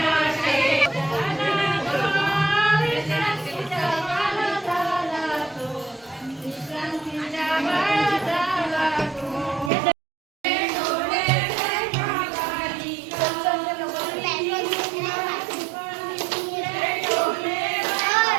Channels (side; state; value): left; drops out; at 9.7 s